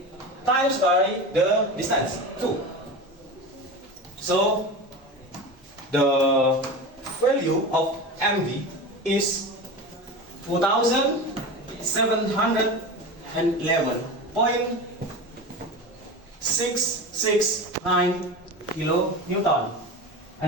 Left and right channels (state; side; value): normal; both; correlation 0.28